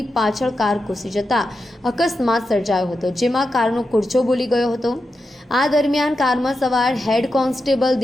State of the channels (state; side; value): normal; both; correlation 0.88